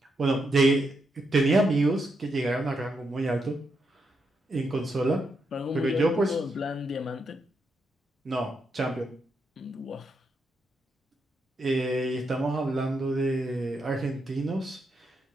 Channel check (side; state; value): both; normal; correlation 0.81